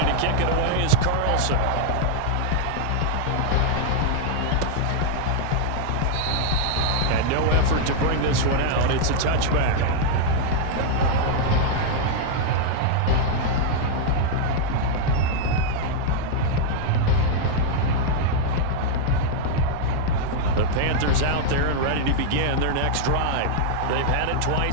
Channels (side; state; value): both; different; correlation -0.01